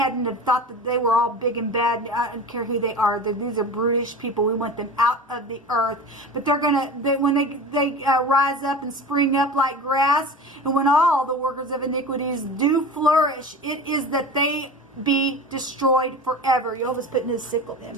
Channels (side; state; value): both; normal; correlation 0.33